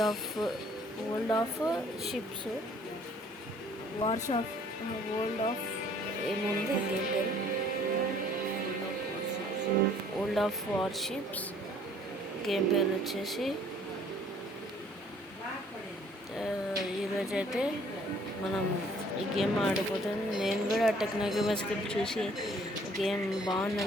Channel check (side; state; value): both; normal; correlation 0.58